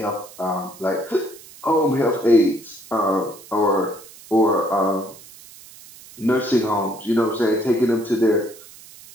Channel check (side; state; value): right; noise; hiss, 20 dB below the sound